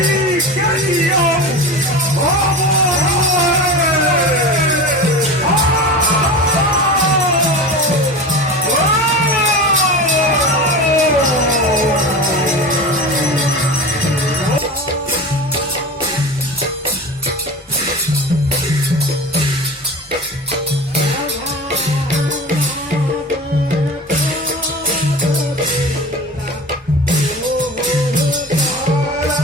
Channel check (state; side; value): normal; both; correlation 0.31